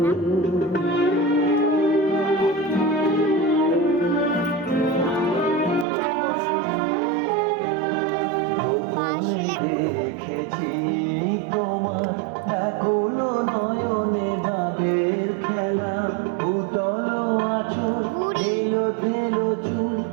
দেখেছি তোমার ব্যাকুল নয়নে ভাবের খেলা, উতল আঁচল এলো তেলো চুল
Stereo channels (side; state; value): left; drops out; at 5.9 s